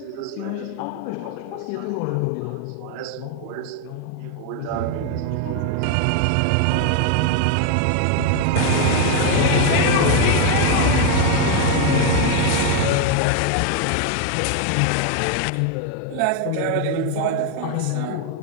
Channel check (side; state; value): both; different; correlation 0.01